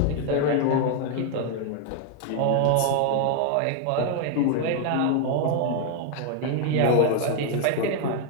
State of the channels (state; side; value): different; both; correlation 0.00